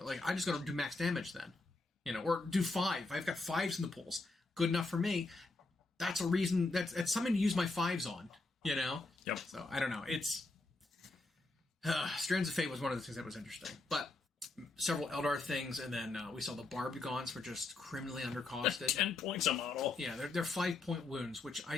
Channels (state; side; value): quieter; right; 3.3 dB